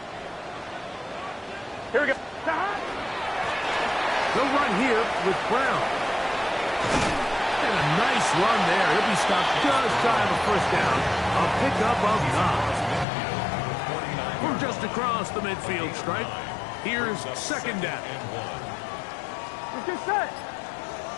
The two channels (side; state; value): right; drops out; at 13.1 s